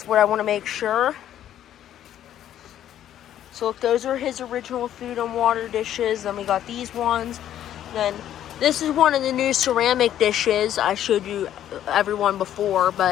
what I want to make sure. So look, those are his original food and water dishes. Then we got these ones. Then this is one of the new ceramic dishes I showed you everyone before,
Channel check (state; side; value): quieter; right; 11.2 dB